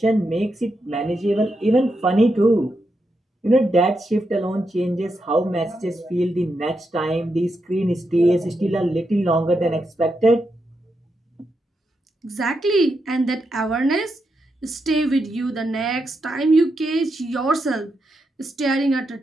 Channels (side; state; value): both; normal; correlation 0.84